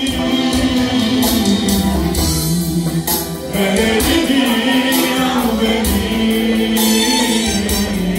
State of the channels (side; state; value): both; identical; correlation 1.00